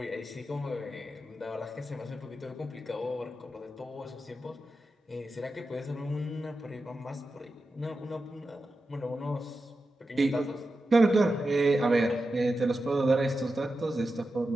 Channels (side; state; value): both; normal; correlation 0.91